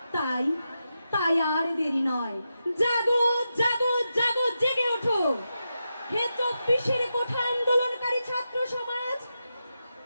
তাই তাই আর দেরি নয়, জাগো জাগো জাগো, জেগে ওঠো হে 24-এর কোঠা আন্দোলনকারী ছাত্র সমাজ।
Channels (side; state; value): both; inverted; correlation -0.88